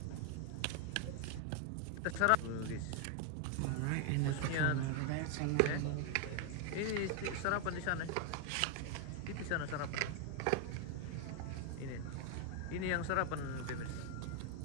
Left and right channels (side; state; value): both; different; correlation 0.01